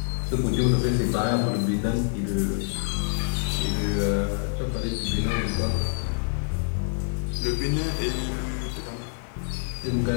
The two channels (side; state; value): right; silent; digital silence